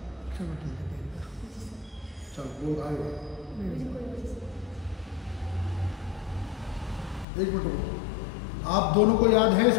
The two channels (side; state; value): right; drops out; at 7.2 s